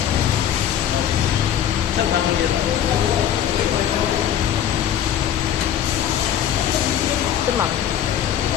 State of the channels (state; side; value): quieter; right; 10.0 dB